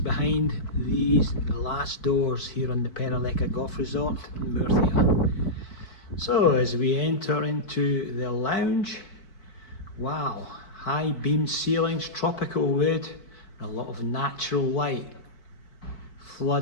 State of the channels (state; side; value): late; right; 4.6 ms